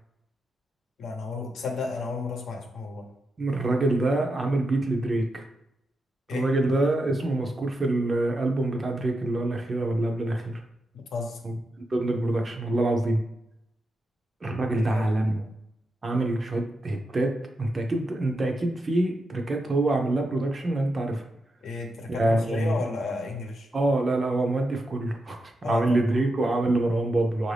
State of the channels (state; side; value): normal; both; correlation 0.86